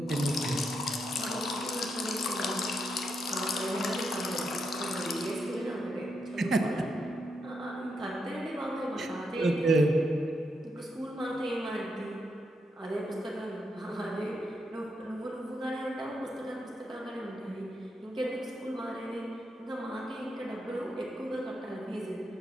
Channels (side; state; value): both; normal; correlation 0.82